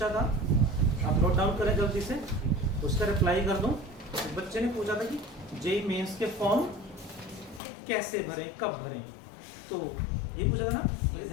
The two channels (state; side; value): drops out; right; at 7.6 s